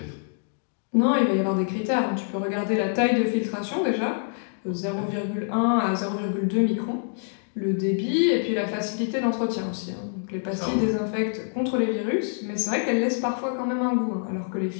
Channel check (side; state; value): right; silent; digital silence